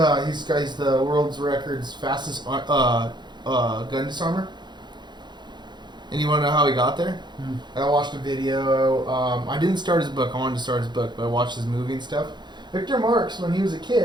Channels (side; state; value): left; late; 0.21 ms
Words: world's records fastest gun disarmer. And you want to know how he got there? I watched a video. I didn't start his book. I wanted to start his book, but I watched his movie and stuff. Victor Marx, when he was a